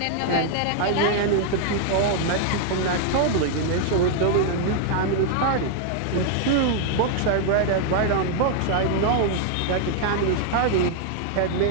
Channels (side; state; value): both; different; correlation 0.00